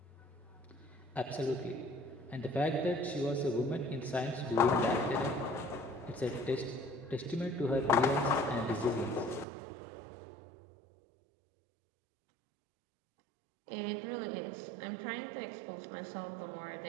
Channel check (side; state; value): left; drops out; at 9.5 s